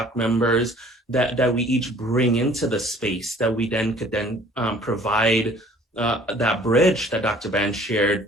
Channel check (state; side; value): normal; both; correlation 0.53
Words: members that we each bring into the space, that we then could provide that bridge that Dr. Ban